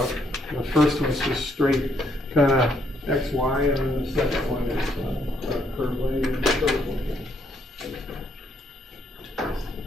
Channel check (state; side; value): normal; both; correlation 0.72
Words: The first one is just straight kind of X, Y, and then the second one is curve lane and curve lane.